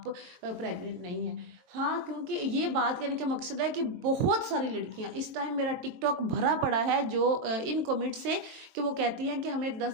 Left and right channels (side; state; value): left; late; 23 ms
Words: प्रेग्नेंट नहीं हैं। हाँ, क्योंकि ये बात करने का मकसद है कि बहुत सारी लड़कियां, इस टाइम मेरा टिकटॉक भरा पड़ा है जो इन कमेंट से, कि वो कहती हैं कि हमें